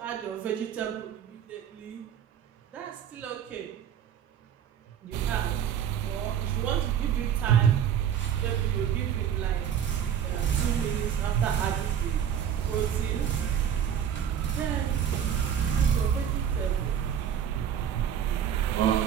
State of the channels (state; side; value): quieter; left; 8.9 dB